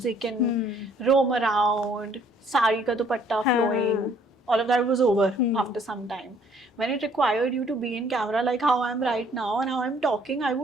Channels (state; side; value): normal; both; correlation 0.61